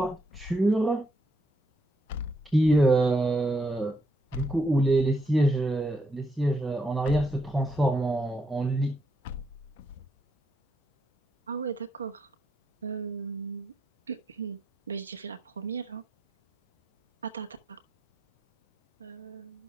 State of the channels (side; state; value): both; normal; correlation 0.78